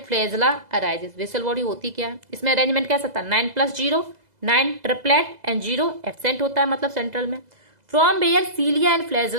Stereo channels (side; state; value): left; late; 2.0 ms